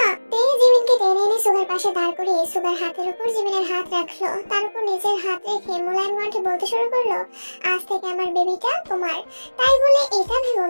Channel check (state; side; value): inverted; both; correlation -1.00